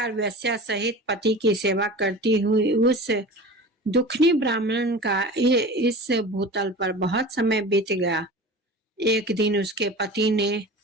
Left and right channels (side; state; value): both; normal; correlation 0.35